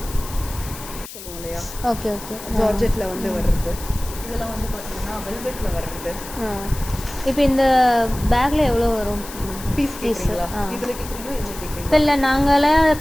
சொல்லுவோம் இல்லையா? Okay okay. ஜார்ஜெட்டில் வந்து வர்றது. இதெல்லாம் வந்து பார்த்தீங்கன்னா வெல்வெட்டில் வர்றது. இப்போ இந்த பேக்கில் எவ்வளோ வரும் பீஸ்? கேட்குறீங்களா? இதில் கேட்குறீங்களா? இதில் கேட்குறீங்களா? இப்போ இல்லை, நாங்களே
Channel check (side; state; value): left; noise; hiss, 13 dB below the sound